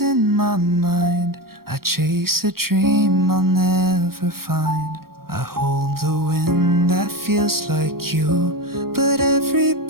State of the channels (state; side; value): late; left; 0.93 ms